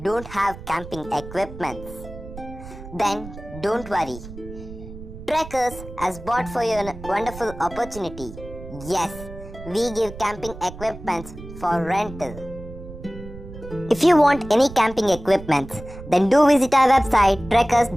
don't have camping equipments, then don't worry. Trekkers has bought for you a wonderful opportunity. Yes, we give camping equipments for rental. If you want any camping equipments, then do visit our website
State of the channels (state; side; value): noise; right; rumble, 14 dB below the sound